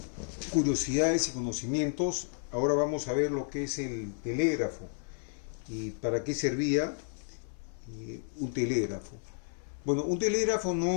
curiosidades y conocimientos, ahora vamos a ver lo que es el telégrafo y para qué servía un telégrafo. Bueno, un telégrafo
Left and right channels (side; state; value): right; silent; 56 dB below the other